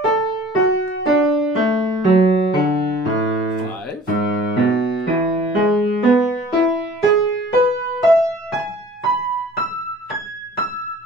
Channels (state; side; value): normal; both; correlation 0.48